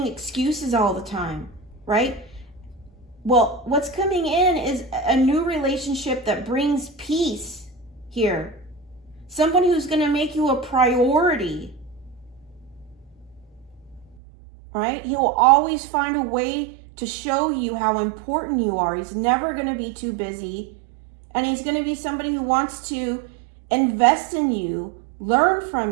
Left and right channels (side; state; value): left; drops out; at 14.2 s